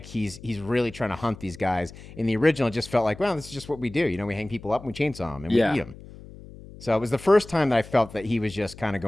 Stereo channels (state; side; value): noise; left; hum, 17 dB below the sound